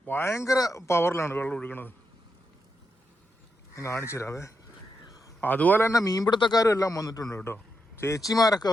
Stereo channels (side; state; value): both; normal; correlation 0.84